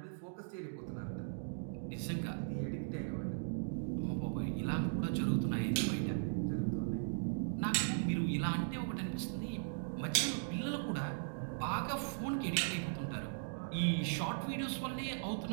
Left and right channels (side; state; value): left; silent; digital silence